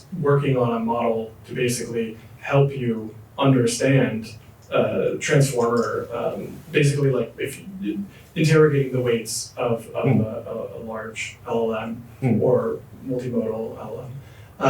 working on a model to basically help you understand transformer, basically like if you, interrogating the weights of a large LLM or multimodal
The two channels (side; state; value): both; identical; correlation 1.00